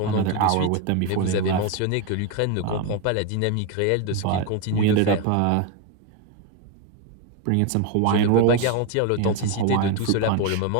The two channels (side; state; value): both; different; correlation 0.01